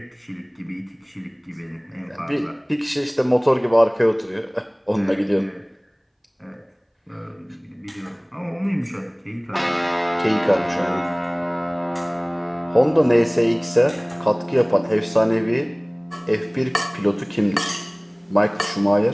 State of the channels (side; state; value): both; identical; correlation 1.00